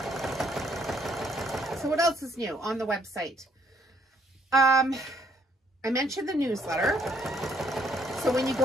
else is new on the website? I mentioned the newsletter. So when you go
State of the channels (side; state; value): both; normal; correlation 0.67